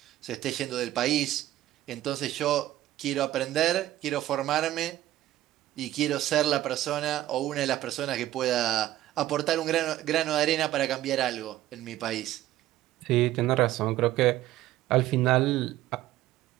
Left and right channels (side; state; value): left; quieter; 14.3 dB